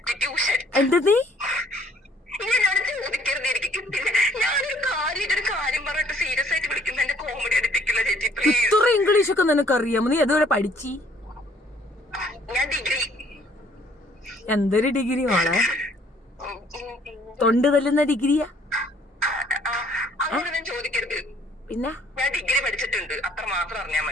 എന്താ നീ എന്നോട് ചോദിക്കരുത്, എനിക്ക് കിട്ടില്ല. ഞാനൊരു കാര്യം പറഞ്ഞിട്ട് സീരിയസ് ആയിട്ട് വിളിക്കുന്ന എന്റെ കോമഡി അടിപ്പിക്കില്ല ചേച്ചി പ്ലീസ്. ഇത്ര ഇംഗ്ലീഷ് ഒക്കെ നിനക്ക് അറിയാമോ? നീ എതുവരെ പഠിച്ചി? ഞാൻ ഡിഗ്രി. എന്തൊരു ഡിഗ്രി മോളെ? തൊണ്ട് തല്ലുന്ന ഡിഗ്രിയാ? അങ്ങോട്ട് ഞാൻ ചോദിക്കരുത്. പിന്നെ ഞാൻ ഡിഗ്രി പഠിച്ചിട്ടുണ്ട്, അത്ര മാത്രം അറിഞ്ഞാ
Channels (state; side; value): normal; both; correlation 0.61